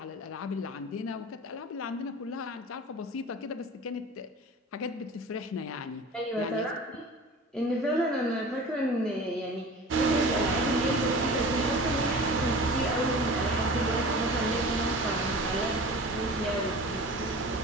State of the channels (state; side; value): normal; both; correlation 0.38